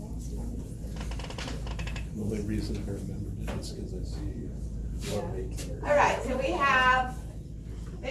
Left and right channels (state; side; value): identical; both; correlation 1.00